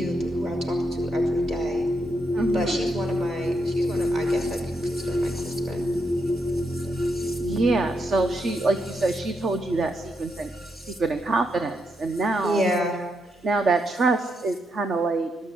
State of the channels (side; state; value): both; normal; correlation 0.81